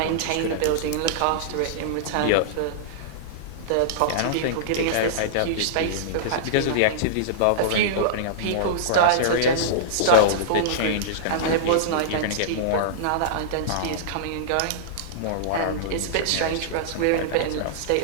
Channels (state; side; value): different; both; correlation -0.02